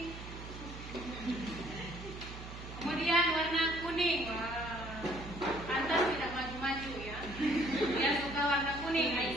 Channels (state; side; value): noise; right; hum, 11 dB below the sound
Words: Kemudian warna kuning. Wah, pantas tidak maju-maju ya. Dia suka warna kuning,